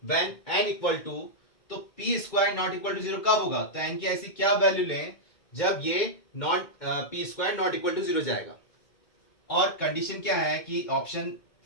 व्हेन एन इक्वल टू, तो P square not equal to 0 कब होगा, तो एन की ऐसी क्या वैल्यू लें जब ये not P square not equal to 0 जाएगा। और कंडीशन क्या है कि ऑप्शन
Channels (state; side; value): late; right; 2.2 ms